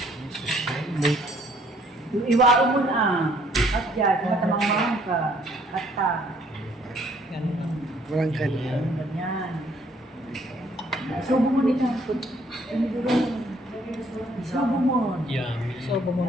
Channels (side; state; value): both; normal; correlation 0.64